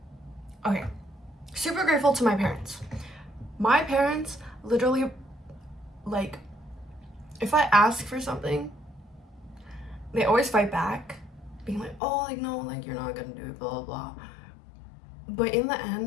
Okay. Super grateful to my parents. My parents literally, like, if I ask for something, they always fight back, being like, oh, like, no, like, you're not gonna do it, blah, blah, blah. But in the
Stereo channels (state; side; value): drops out; right; at 12.0 s